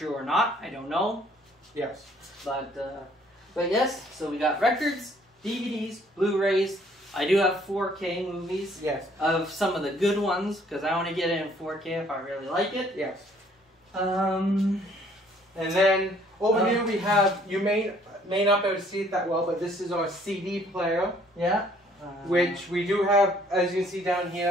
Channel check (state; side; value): normal; both; correlation 0.61